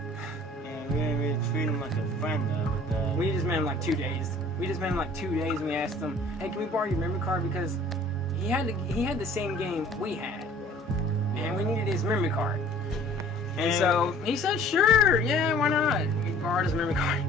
And we didn't really treat him like a friend though. But we just met him 2 days. And we asked him, hey, can we borrow your memory card, because he had the same game we had, and we needed his memory card. And so he said, sure, yeah, why not? We borrowed his memory card.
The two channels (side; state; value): both; normal; correlation 0.51